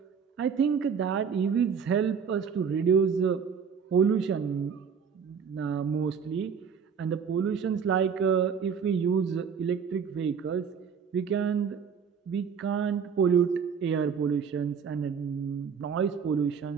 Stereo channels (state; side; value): quieter; left; 6.6 dB